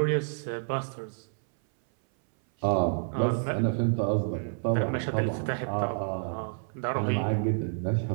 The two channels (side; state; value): left; silent; 59 dB below the other